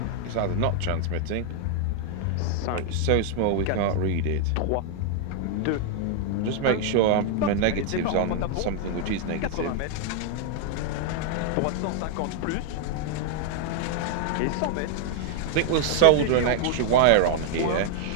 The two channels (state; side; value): different; both; correlation 0.00